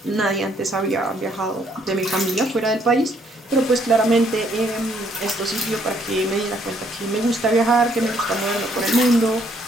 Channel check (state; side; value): normal; both; correlation 0.68